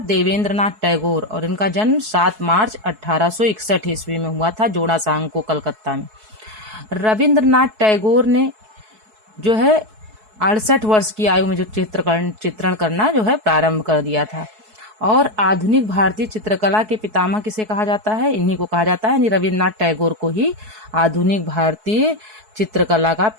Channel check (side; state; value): left; late; 4.7 ms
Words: टैगोर। और इनका जन्म 7 मार्च 1861 ईस्वी में हुआ था, जोड़ा सांकों कलकत्ता में। रविन्द्रनाथ टैगोर ने जो है 68 वर्ष की आयु में जो चित्रण करना जो है प्रारंभ कर दिया था। और आधुनिक भारतीय चित्रकला के पितामह किसे कहा जाता है? इन्हीं को कहा जाता है, यानी रविन्द्रनाथ टैगोर को ही आधुनिक भारतीय चित्रकला का